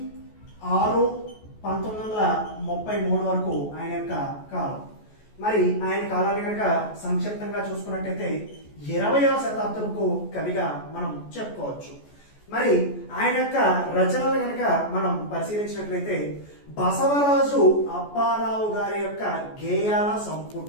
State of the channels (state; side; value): late; right; 14 ms